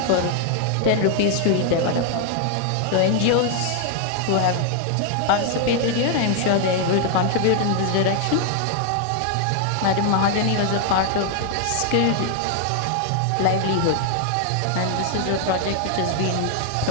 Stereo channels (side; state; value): both; different; correlation 0.00